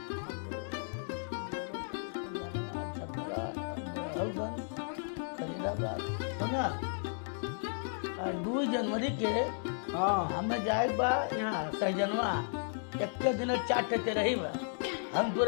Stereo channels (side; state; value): right; silent; digital silence